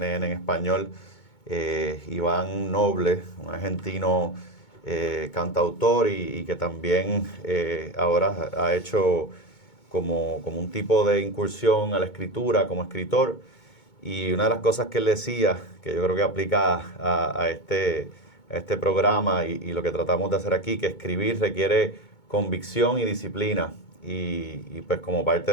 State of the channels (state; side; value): late; right; 2.2 ms